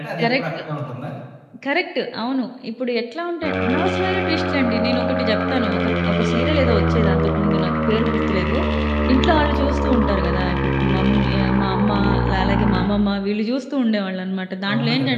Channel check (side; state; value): both; identical; correlation 1.00